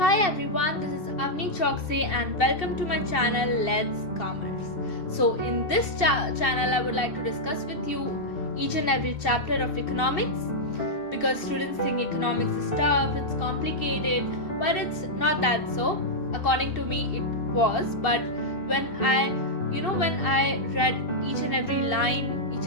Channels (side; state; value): right; late; 2.7 ms